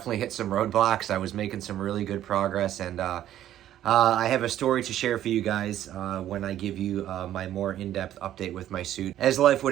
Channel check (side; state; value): left; quieter; 12.0 dB